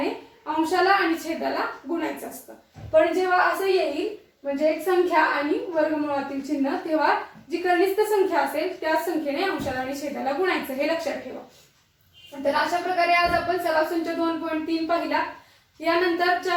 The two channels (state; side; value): identical; both; correlation 1.00